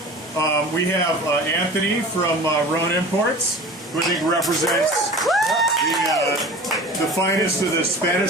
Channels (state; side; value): normal; both; correlation 0.39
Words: We have Anthony from Rhone Imports, who I think represents the finest of the